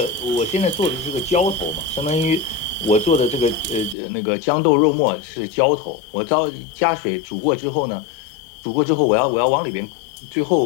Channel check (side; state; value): right; drops out; at 4.0 s